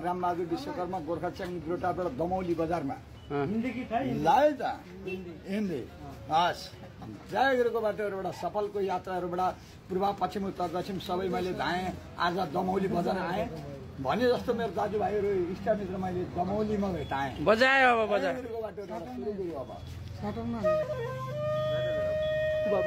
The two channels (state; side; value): identical; both; correlation 1.00